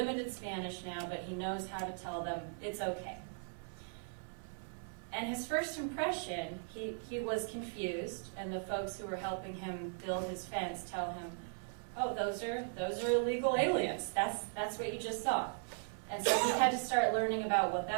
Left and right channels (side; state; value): left; silent; 52 dB below the other